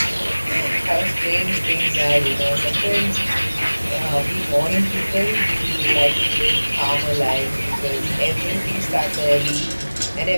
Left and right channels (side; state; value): both; inverted; correlation -1.00